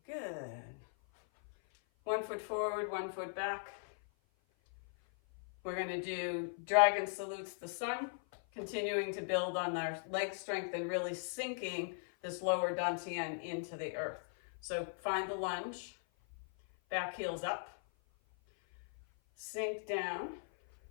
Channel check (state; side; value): silent; right; 52 dB below the other